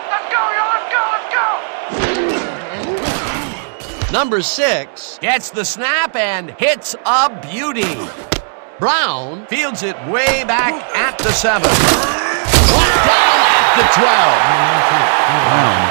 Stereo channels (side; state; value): left; silent; digital silence